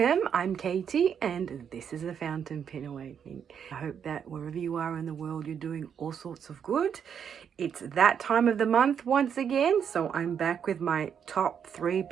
I'm Katie and this is a Fountain Pen Awakening. I hope that wherever you are in the world, you're doing all sorts of good. It's that time of the month once again, so I'm back with my top 3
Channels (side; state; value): left; quieter; 7.8 dB